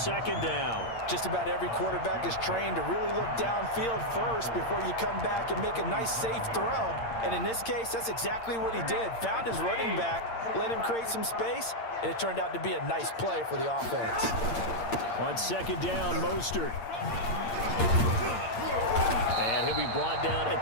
down. Just about every quarterback is trained to really look downfield first before you come back and make a nice, safe throw. And in this case, that's exactly what he did. Found his running back, let him create some space, and it turned out to be a nice play for the offense. On 2nd down, Mostert. And he'll be brought down at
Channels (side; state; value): right; late; 8.7 ms